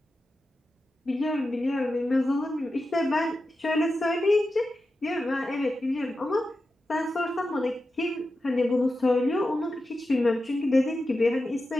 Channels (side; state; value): both; normal; correlation 0.91